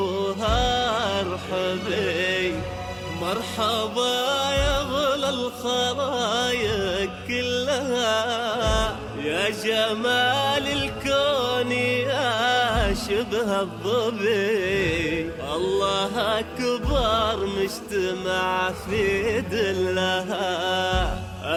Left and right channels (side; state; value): both; identical; correlation 1.00